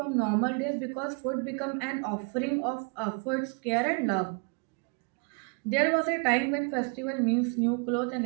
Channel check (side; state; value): left; quieter; 36.7 dB